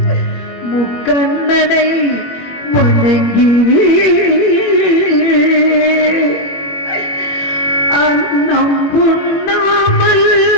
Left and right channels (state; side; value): late; right; 21 ms